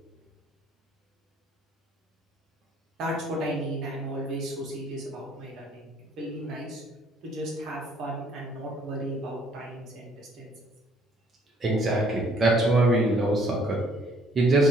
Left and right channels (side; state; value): both; normal; correlation 0.62